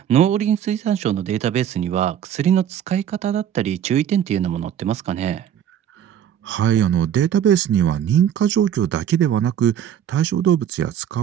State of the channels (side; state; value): left; quieter; 9.7 dB